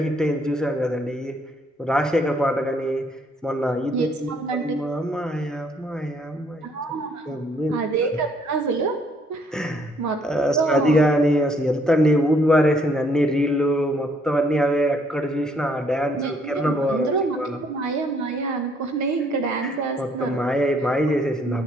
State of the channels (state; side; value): normal; both; correlation 0.66